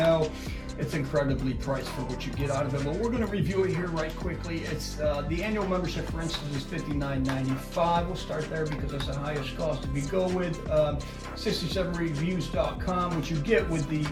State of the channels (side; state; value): both; identical; correlation 1.00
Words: It's incredibly priced for what you get out of it, but we're going to review it here right quickly. It's the annual membership, for instance, is $59.95. We'll start there because that's the highest cost. If you go with 67reviews.com, which you get with the